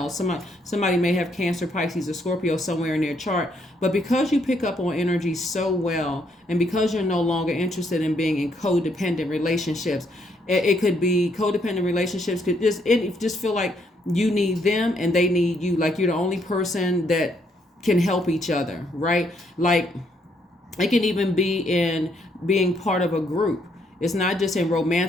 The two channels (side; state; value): both; normal; correlation 0.72